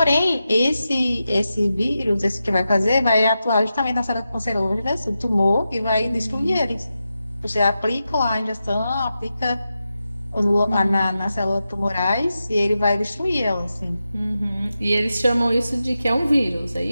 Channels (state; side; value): inverted; both; correlation -0.90